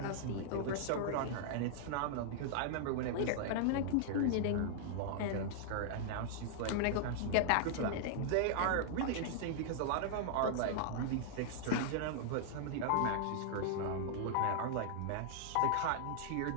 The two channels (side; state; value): both; different; correlation -0.01